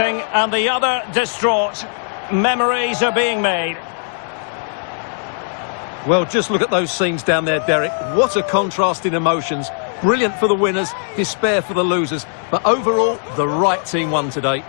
and the other distraught. Memories are being made. Well, just look at those scenes down there, Derek. What a contrast in emotions. Brilliant for the winners, despair for the losers. But overall, the right team won today.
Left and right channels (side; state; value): right; silent; 67 dB below the other